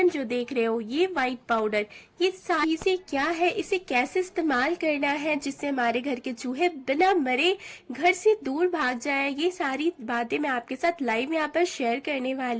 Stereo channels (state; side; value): identical; both; correlation 1.00